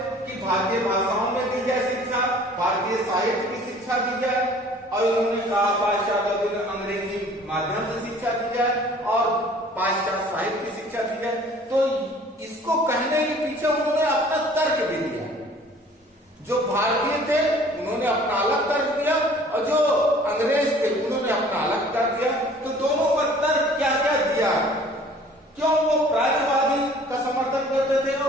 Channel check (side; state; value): both; normal; correlation 0.51